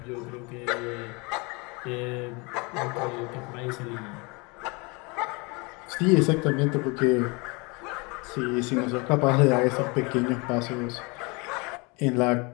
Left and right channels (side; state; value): right; quieter; 28.6 dB